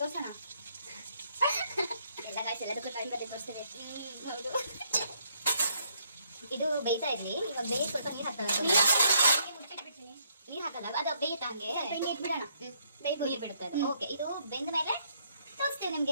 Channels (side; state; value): both; inverted; correlation -0.71